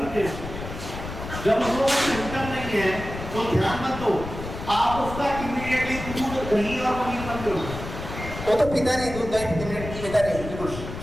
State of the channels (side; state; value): left; noise; rumble, 9 dB below the sound